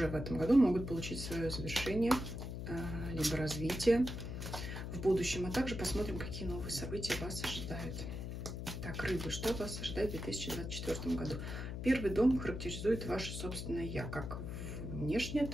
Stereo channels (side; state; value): left; noise; hum, 5 dB below the sound